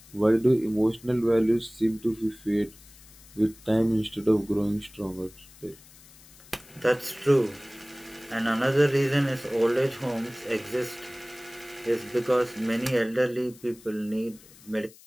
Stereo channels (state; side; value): noise; left; hiss, 23 dB below the sound